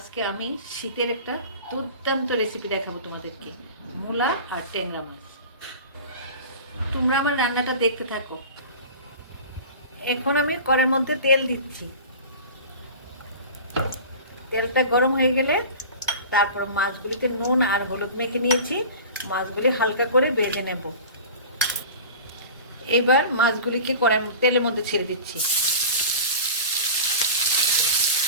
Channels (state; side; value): inverted; both; correlation -0.36